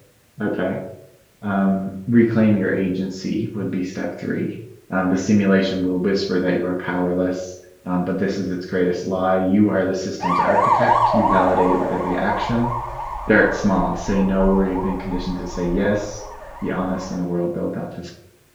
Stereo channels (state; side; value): identical; both; correlation 1.00